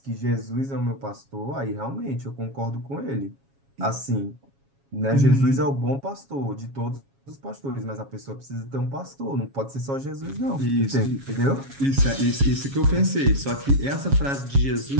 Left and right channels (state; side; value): late; left; 7.3 ms